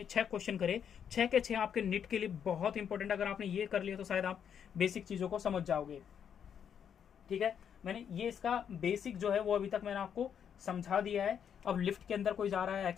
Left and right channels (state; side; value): quieter; right; 8.2 dB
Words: 6 क्वेश्चन करे, 6 के 6 आपके नीट के लिए बहुत इंपॉर्टेंट। अगर आपने ये कर लिया तो शायद आप बेसिक चीजों को समझ जाओगे। ठीक है, मैंने ये इसका बेसिक जो है वो अभी तक मैंने आपको समझा दिया है। अब लिफ्ट के अंदर कोई जा रहा है,